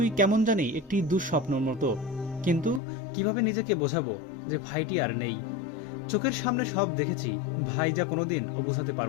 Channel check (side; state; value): right; drops out; at 2.8 s